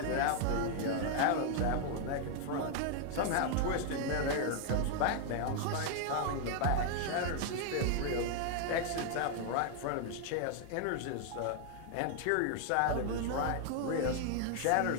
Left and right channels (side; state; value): both; different; correlation 0.00